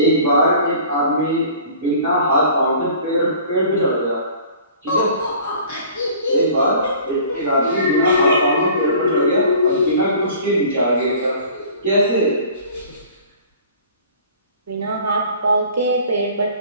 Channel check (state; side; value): inverted; both; correlation -0.47